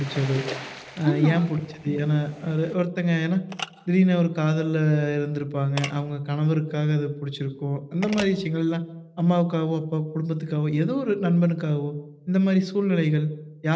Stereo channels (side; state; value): both; identical; correlation 1.00